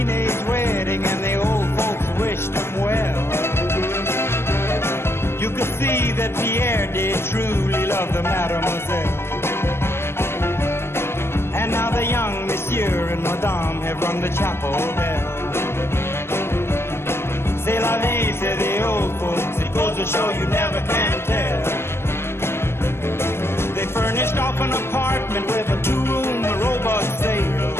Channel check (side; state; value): right; late; 0.12 ms